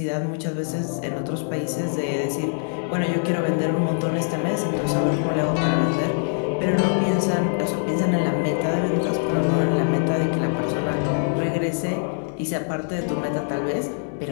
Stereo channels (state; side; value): silent; right; 63 dB below the other